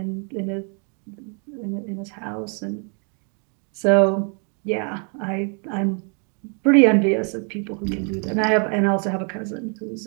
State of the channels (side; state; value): left; quieter; 39.9 dB